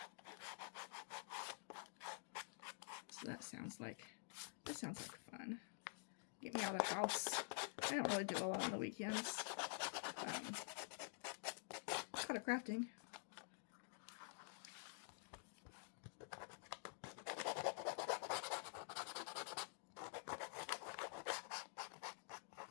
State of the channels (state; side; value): silent; right; digital silence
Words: So that sounds like fun. Get me out of the house. I don't really do a lot on the weekends. Kind of crafting.